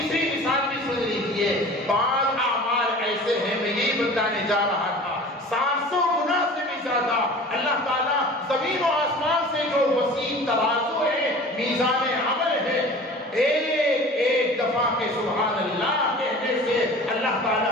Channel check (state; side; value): normal; both; correlation 0.41